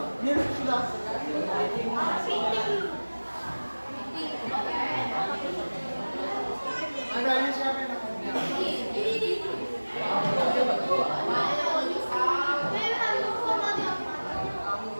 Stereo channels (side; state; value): both; inverted; correlation -1.00